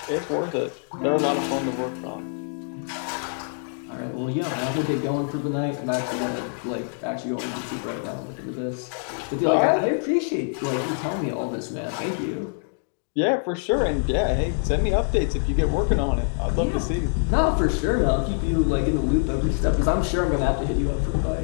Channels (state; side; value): silent; right; 62 dB below the other